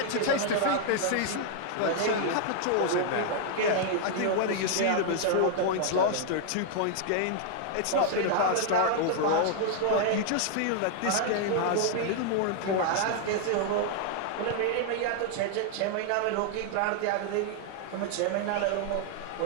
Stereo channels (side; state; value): both; different; correlation 0.00